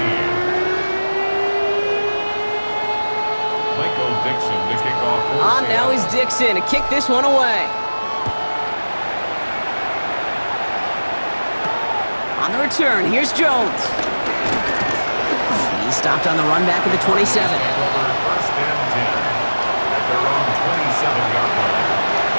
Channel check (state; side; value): inverted; both; correlation -1.00